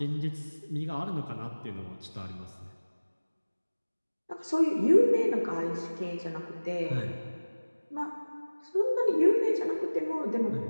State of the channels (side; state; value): both; inverted; correlation -1.00